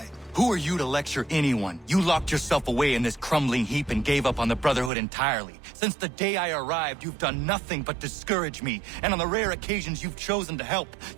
Who are you to lecture anyone? You locked yourself away in this crumbling heap and gave up on the Brotherhood entirely. Since the day I arrived, you've done nothing but discourage me. And on the rare occasions you've chosen to help,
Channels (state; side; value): drops out; left; at 4.9 s